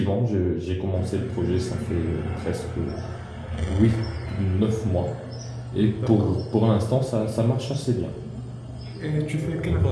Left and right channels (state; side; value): identical; both; correlation 1.00